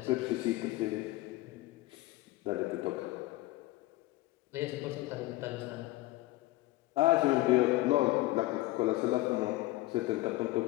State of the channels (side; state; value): right; quieter; 18.4 dB